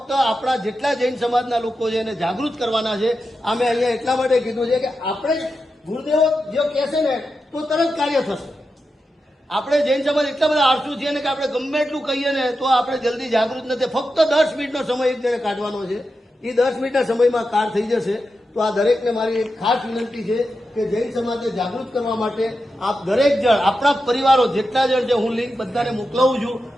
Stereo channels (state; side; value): normal; both; correlation 0.89